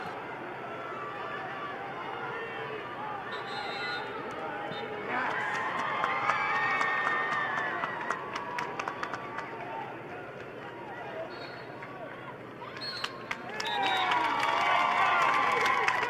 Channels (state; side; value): identical; both; correlation 1.00